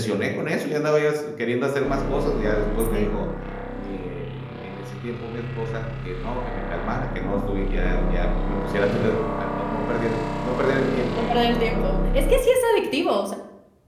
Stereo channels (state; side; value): identical; both; correlation 1.00